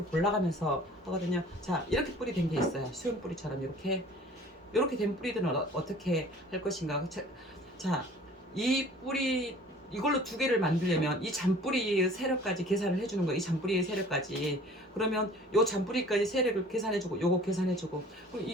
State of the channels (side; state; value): both; normal; correlation 0.49